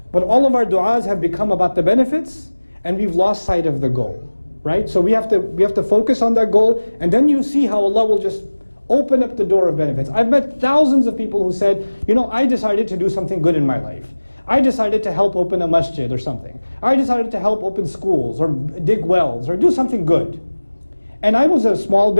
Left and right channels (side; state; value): both; inverted; correlation -1.00